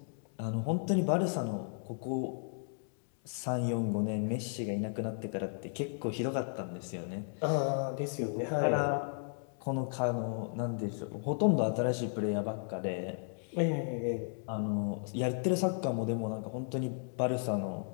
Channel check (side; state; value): right; silent; digital silence